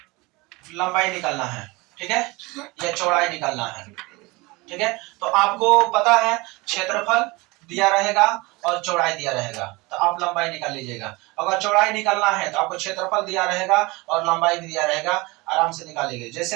लंबाई निकालना है, ठीक है, या चौड़ाई निकालना है, ठीक है, तो आपको पता है क्षेत्रफल दिया रहेगा और चौड़ाई दिया रहेगा, तो आप लंबाई निकाल लीजिएगा। अगर चौड़ाई निकालना है तो आपको क्षेत्रफल दिया रहेगा और लंबाई भी दिया रहेगा, आराम से निकालिएगा।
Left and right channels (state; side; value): quieter; left; 23.9 dB